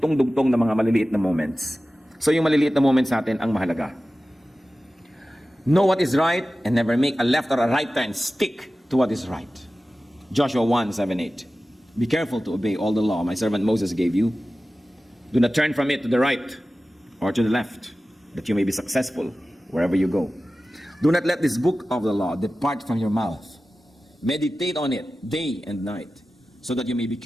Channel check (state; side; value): normal; both; correlation 0.95